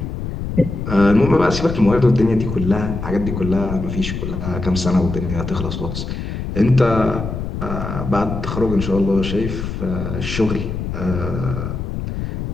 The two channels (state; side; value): noise; left; rumble, 5 dB below the sound